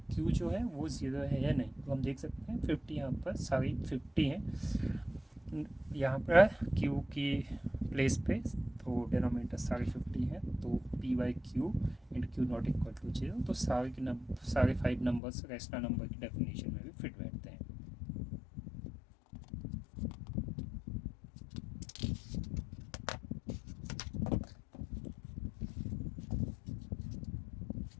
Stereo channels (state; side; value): drops out; right; at 15.2 s